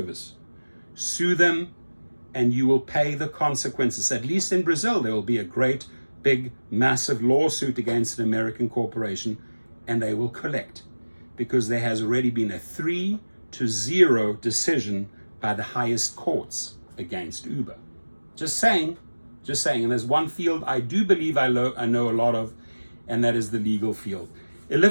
Sue them and you will pay the consequences. At least in Brazil, there will be a great, big, massive lawsuit against an American corporation and they will collect, because there has already been a 3-0 decision by the highest courts against Uber. Just saying. And there's one field I do believe I know a lot of, and that is the legal field. A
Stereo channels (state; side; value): inverted; both; correlation -1.00